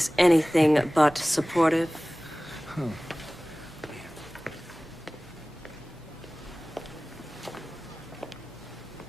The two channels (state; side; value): normal; both; correlation 0.98